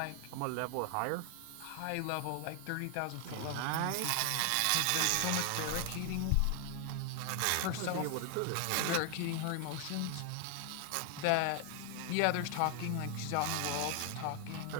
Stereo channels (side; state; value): both; different; correlation 0.00